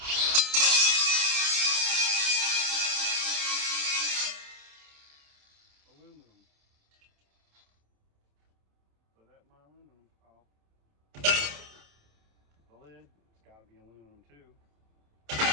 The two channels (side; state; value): left; late; 27 ms